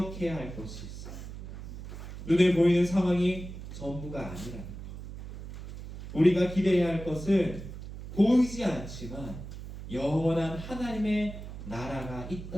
할 것이 있어요. 눈에 보이는 상황이 전부가 아니라는 것. 우리가 기대해야 할 것은 보이지 않지만 영원한 하나님의 나라가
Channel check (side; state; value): right; noise; hum, 11 dB below the sound